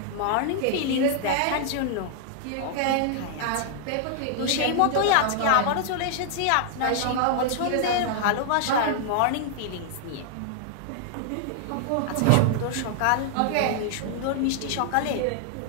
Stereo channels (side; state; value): both; different; correlation 0.00